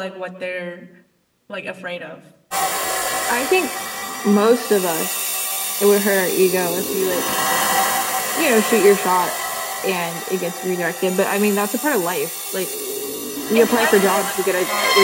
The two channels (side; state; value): both; identical; correlation 1.00